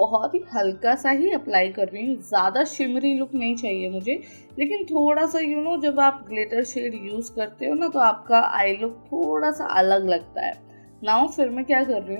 ही हल्का सा ही अप्लाई कर रही हूँ। ज़्यादा शिमरी लुक नहीं चाहिए मुझे लेकिन थोड़ा सा जब आप ग्लिटर शेड यूज़ करते हो ना तो आपका आई लुक थोड़ा सा अलग लगता है। नाउ फिर मैं क्या कर रही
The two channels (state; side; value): inverted; both; correlation -1.00